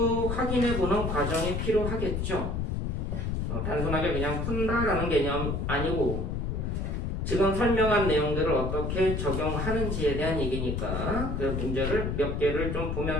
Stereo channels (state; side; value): noise; left; rumble, 1 dB below the sound